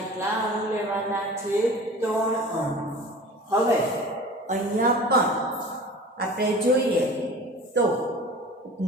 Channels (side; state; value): both; normal; correlation 0.39